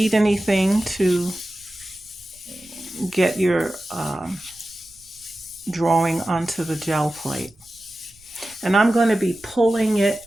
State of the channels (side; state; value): right; noise; rumble, 27 dB below the sound